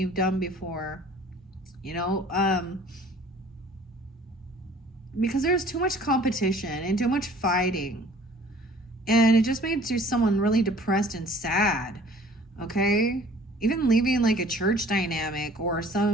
done before. Because there's too much competition and too much fighting. And it just makes you someone really depressed and sad. Okay? Even leaving like a church dynamic or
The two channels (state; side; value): normal; both; correlation 0.51